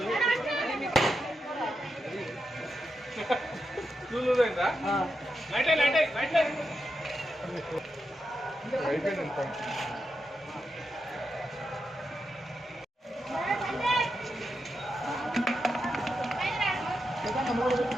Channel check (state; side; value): normal; both; correlation 0.87